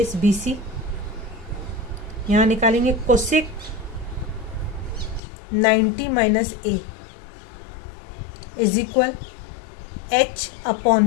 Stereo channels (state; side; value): drops out; right; at 5.2 s